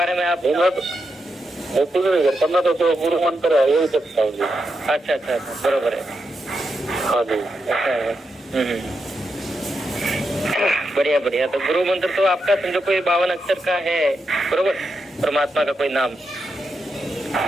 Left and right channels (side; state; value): both; normal; correlation 0.85